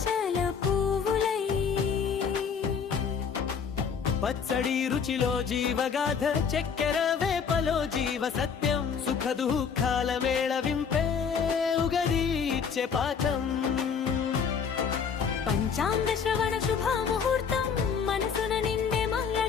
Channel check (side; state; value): right; quieter; 6.5 dB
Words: పువ్వులై పచ్చడి రుచిలో జీవగాథ చక్కెర వేపలో జీవ సత్యం సుఖ దుఃఖాల మేళవింపే ఉగది ఇచ్చే పాఠం పంచాంగ శ్రవణ శుభ ముహూర్తం మనసున నిండే